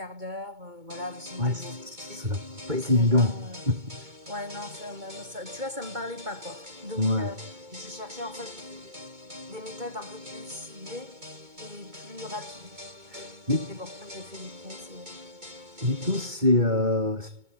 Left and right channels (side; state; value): left; late; 2.2 ms